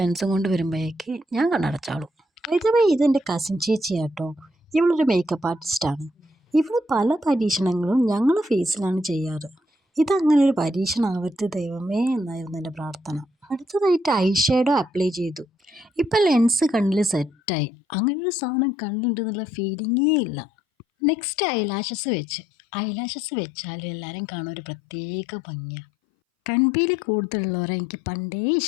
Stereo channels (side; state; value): right; drops out; at 17.4 s